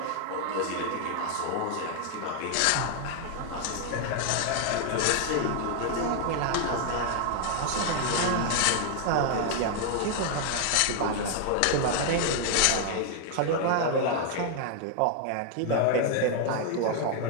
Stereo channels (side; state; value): both; different; correlation 0.00